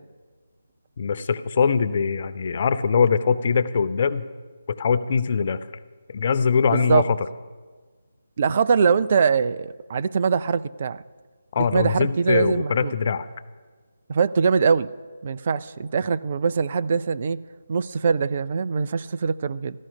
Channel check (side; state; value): both; inverted; correlation -0.78